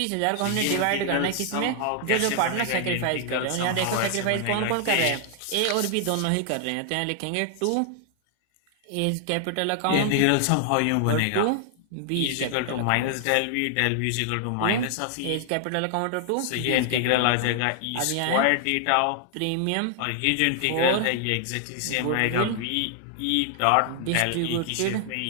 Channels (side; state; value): both; different; correlation 0.00